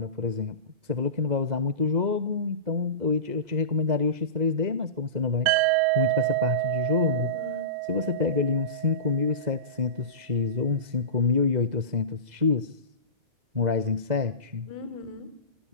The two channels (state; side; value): late; left; 2.0 ms